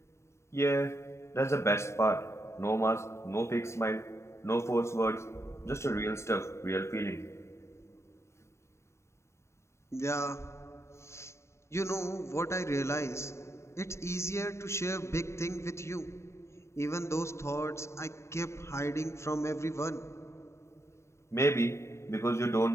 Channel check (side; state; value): right; late; 0.13 ms